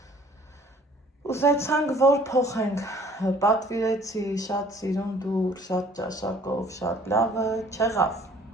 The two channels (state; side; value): normal; both; correlation 0.55